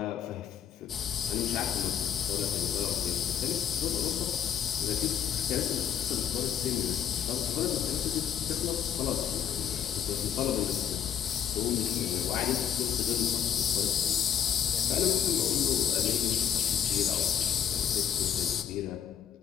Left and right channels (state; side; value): quieter; right; 8.9 dB